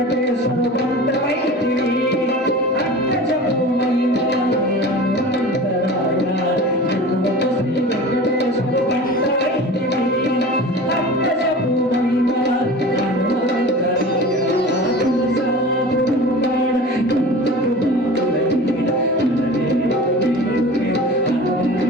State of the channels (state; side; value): normal; both; correlation 0.36